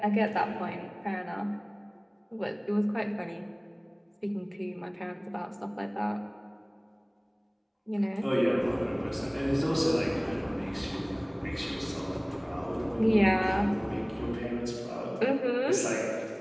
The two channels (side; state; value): both; identical; correlation 1.00